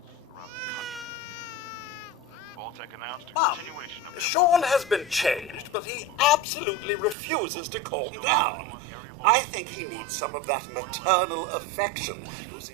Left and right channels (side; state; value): left; drops out; at 7.2 s